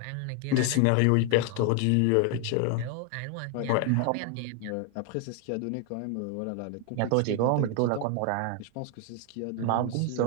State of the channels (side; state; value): both; different; correlation 0.01